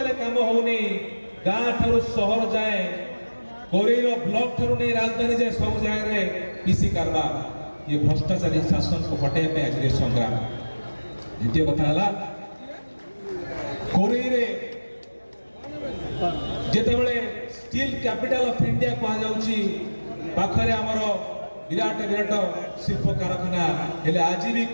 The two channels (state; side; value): inverted; both; correlation -1.00